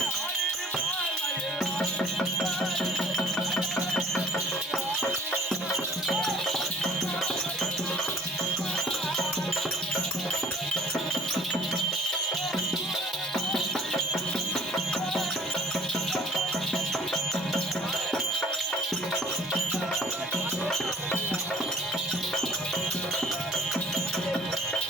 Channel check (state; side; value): normal; both; correlation 0.52